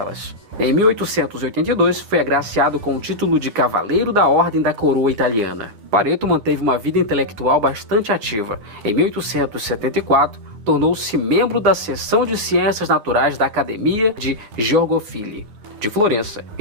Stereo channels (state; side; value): late; left; 9.4 ms